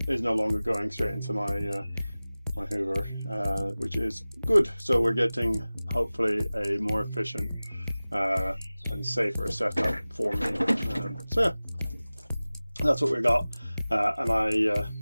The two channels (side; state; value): both; inverted; correlation -0.98